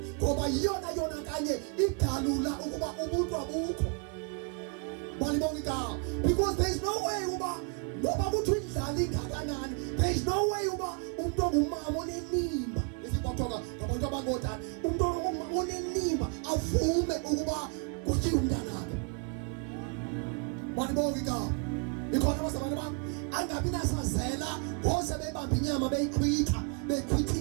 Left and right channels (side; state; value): left; quieter; 35.5 dB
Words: ngoba yona kanye idalula ukuba ubuntu abukho. Walibonga igama. Because there is no way uba ngoba kuthi indlala ingakanani, there is no way uba umuntu ongumama onenimba esibaphoka ngabantu abangotana umuntu ongumama onenimba avume ukuba kuthiwe umntanakhe. Walibonga igama. Ikhona abazalwane bami angabi nasazela wonke bebamba inyama beyichitha